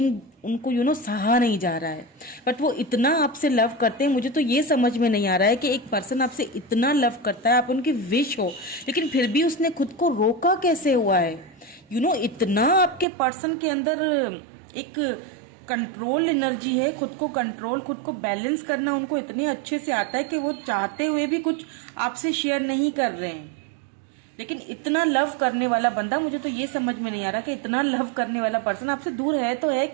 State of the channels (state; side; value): drops out; left; at 13.1 s